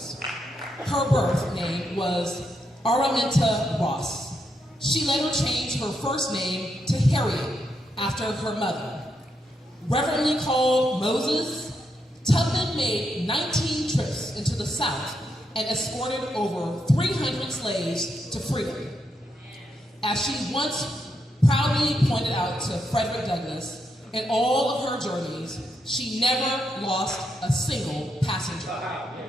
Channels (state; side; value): normal; both; correlation 0.81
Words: Her birth name was Araminta Ross. She later changed her first name to Harriet after her mother. Reverently called Moses, Tubman made 19 trips into the South and escorted over 300 slaves to freedom. As she once proudly pointed out to Frederick Douglass, in all of her journeys, she never lost a single passenger.